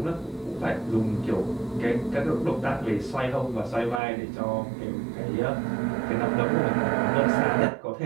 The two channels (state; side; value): drops out; left; at 4.0 s